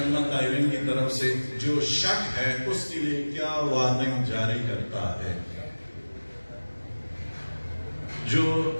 قائلین کی طرف سے جو شک ہے اس کے لیے کیا وارننگ جاری کرتا ہے. جو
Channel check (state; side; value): inverted; both; correlation -1.00